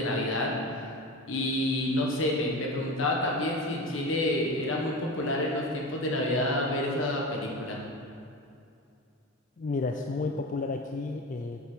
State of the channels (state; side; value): normal; both; correlation 0.27